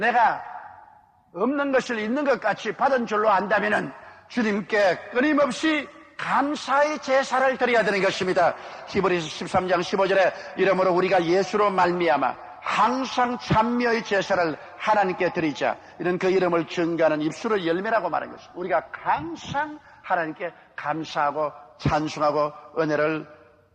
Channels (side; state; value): both; identical; correlation 1.00